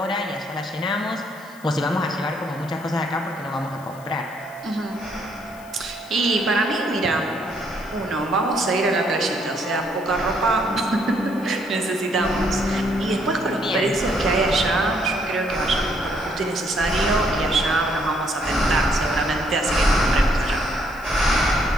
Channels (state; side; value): noise; left; hiss, 24 dB below the sound